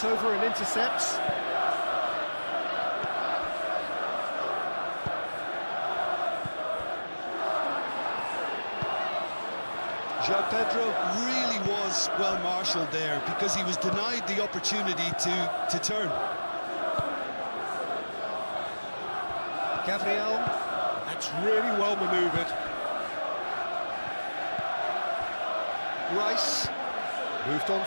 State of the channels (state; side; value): inverted; both; correlation -1.00